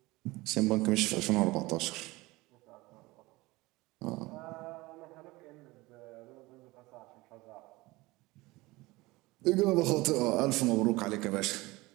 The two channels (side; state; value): left; quieter; 21.2 dB